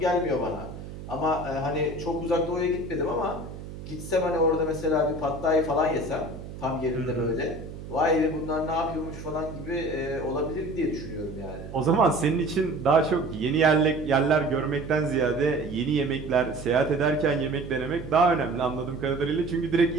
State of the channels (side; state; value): right; noise; hum, 12 dB below the sound